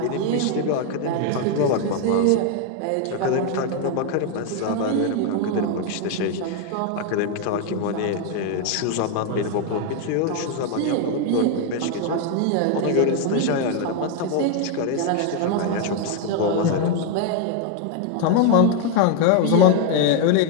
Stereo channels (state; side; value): different; both; correlation 0.01